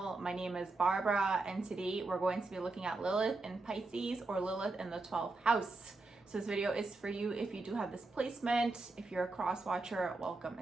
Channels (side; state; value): left; quieter; 3.3 dB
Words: My name is Barbara, and today we're going to be looking at Lilith in Pisces, or Lilith in the 12th house. So this video is for you if you do have this placement. If you're a cross watcher, welcome